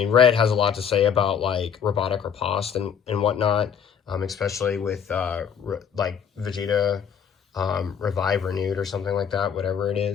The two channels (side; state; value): right; quieter; 7.6 dB